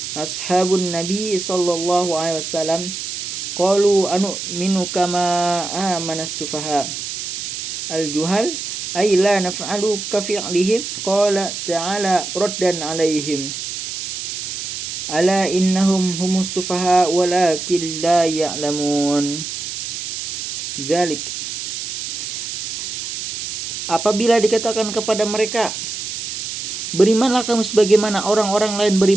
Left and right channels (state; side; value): noise; right; hiss, 6 dB below the sound